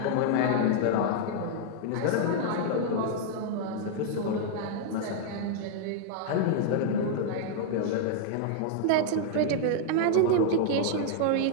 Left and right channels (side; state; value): both; different; correlation -0.01